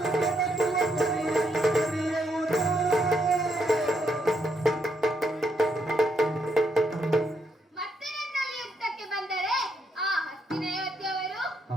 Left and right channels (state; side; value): normal; both; correlation 0.77